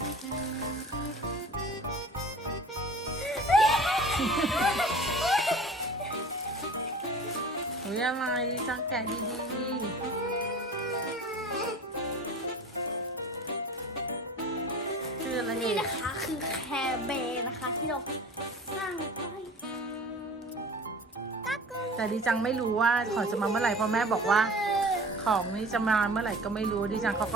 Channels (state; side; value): normal; both; correlation 0.41